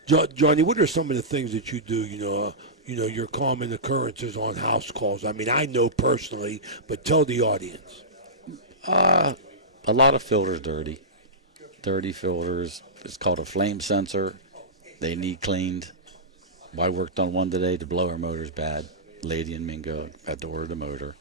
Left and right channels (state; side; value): normal; both; correlation -0.16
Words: Johnny, what are some of the things that you do? Your common occurrences on house calls. I mean, I know personally, but tell the audience. A lot of filters dirty filters. It's called a flame sensor. They need cleaned. I worked on one today. The blower motor's bad. Lady and Mingo had to order the motor.